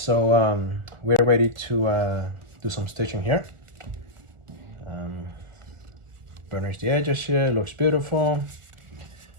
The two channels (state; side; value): late; left; 1.4 ms